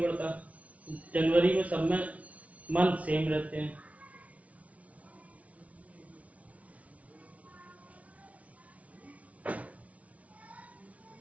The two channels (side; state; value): left; late; 0.067 ms